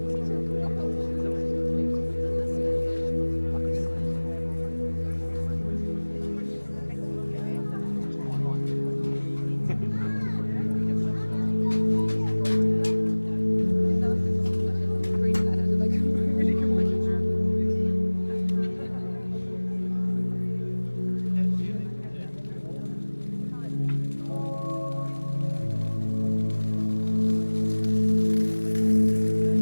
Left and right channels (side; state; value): both; inverted; correlation -1.00